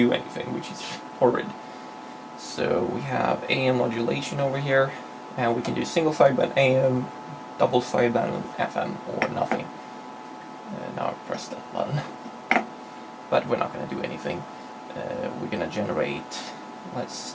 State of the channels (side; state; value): both; identical; correlation 1.00